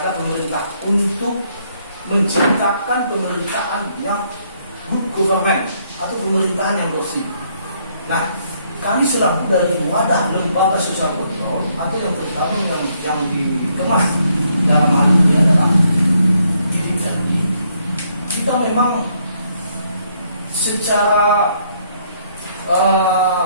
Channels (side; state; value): both; inverted; correlation -0.71